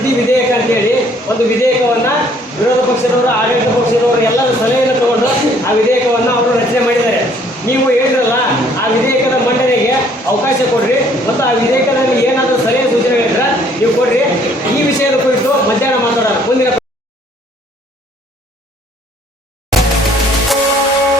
ವಿಧೇಯಕ ಅಂತೇಳಿ ಒಂದು ವಿಧೇಯಕವನ್ನು ವಿರೋಧ ಪಕ್ಷದವರು, ಆಡಳಿತ ಪಕ್ಷದವರು ಎಲ್ಲರ ಸಲಹೆಯನ್ನು ತಗೊಂಡು ಆ ವಿಧೇಯಕವನ್ನು ಅವರು ರಚನೆ ಮಾಡಿದ್ದಾರೆ. ನೀವು ಹೇಳಿದ್ರಲ್ಲ, ಆ ವಿಧೇಯಕದ ಮಂಡನೆಗೆ ಅವಕಾಶ ಕೊಡ್ರಿ ಮತ್ತು ಆ ವಿಧೇಯಕದಲ್ಲಿ ಏನಾದರೂ ಸಲಹೆ ಸೂಚನೆಗಳಿದ್ರೆ ನೀವು ಕೊಡ್ರಿ. ಈ ವಿಷಯದ ಕುರಿತು ಮಧ್ಯಾಹ್ನ ಮಾತಾಡೋಣ. ಮುಂದಿನ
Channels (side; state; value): both; normal; correlation 0.61